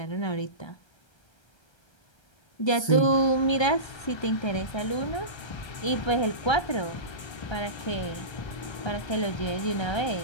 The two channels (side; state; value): right; late; 1.3 ms